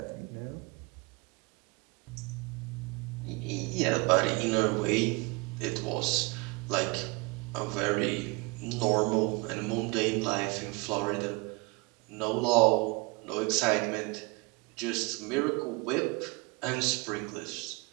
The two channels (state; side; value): quieter; left; 27.4 dB